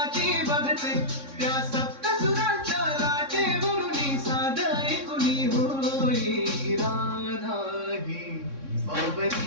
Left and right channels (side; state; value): left; late; 3.6 ms